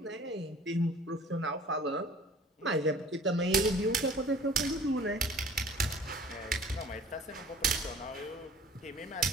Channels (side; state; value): both; normal; correlation 0.48